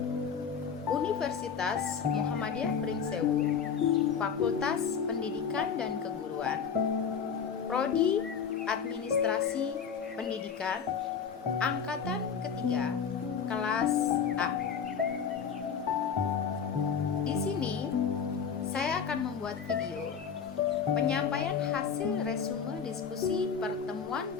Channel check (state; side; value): quieter; right; 6.8 dB